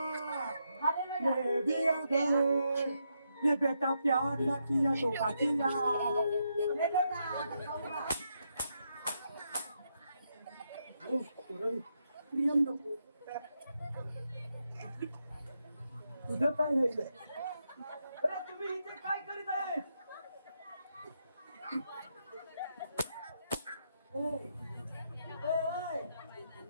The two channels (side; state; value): both; inverted; correlation -0.81